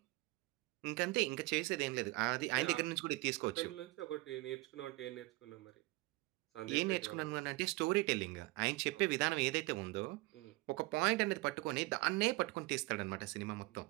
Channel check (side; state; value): left; quieter; 22.0 dB